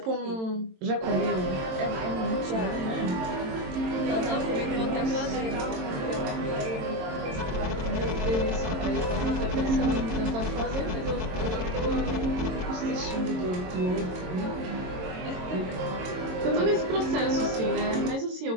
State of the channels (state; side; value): late; left; 22 ms